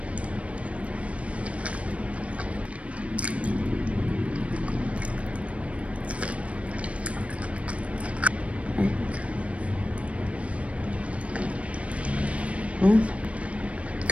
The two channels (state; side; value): late; left; 0.063 ms